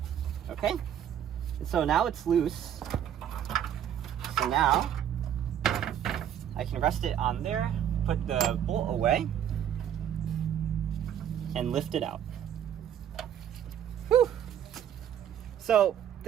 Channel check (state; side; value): quieter; left; 9.9 dB